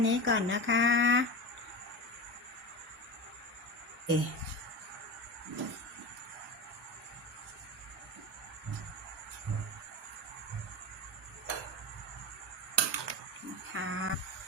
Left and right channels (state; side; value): normal; both; correlation 0.25